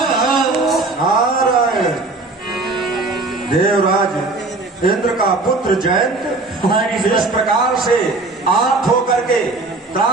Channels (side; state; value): left; quieter; 3.3 dB